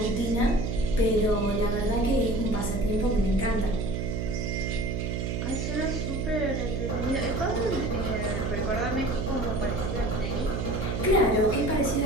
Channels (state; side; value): noise; right; hum, 2 dB below the sound